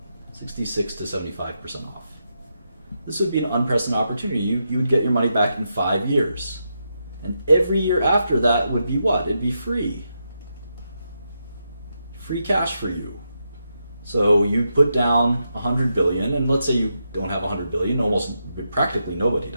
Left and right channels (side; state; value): both; inverted; correlation -0.84